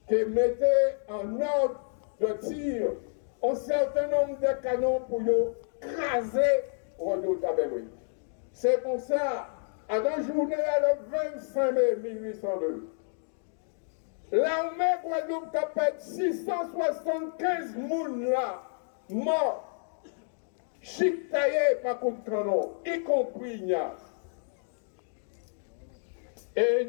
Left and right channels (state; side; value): silent; right; digital silence